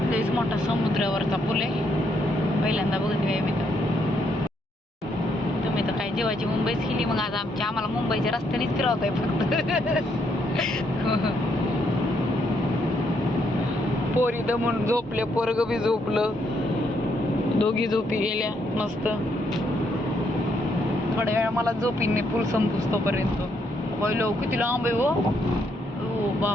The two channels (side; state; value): both; normal; correlation 0.74